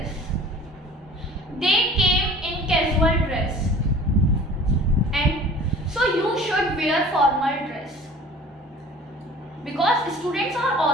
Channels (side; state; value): both; normal; correlation 0.45